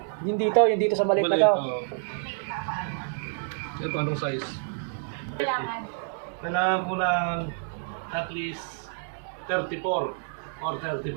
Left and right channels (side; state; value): left; silent; digital silence